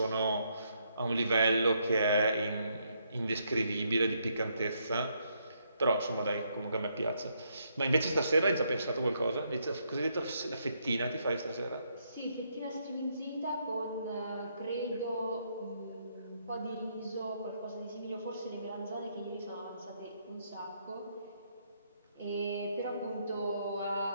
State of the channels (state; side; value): inverted; both; correlation -0.75